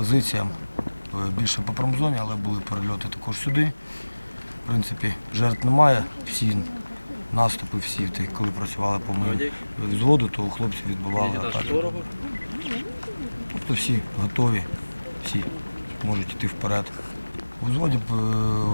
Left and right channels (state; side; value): inverted; both; correlation -1.00